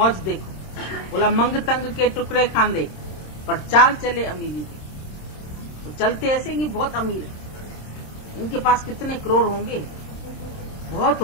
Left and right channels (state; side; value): late; right; 26 ms